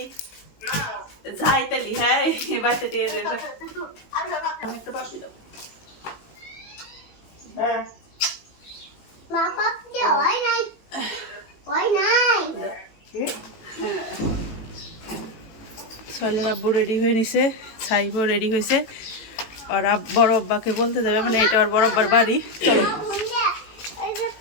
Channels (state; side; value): late; right; 18 ms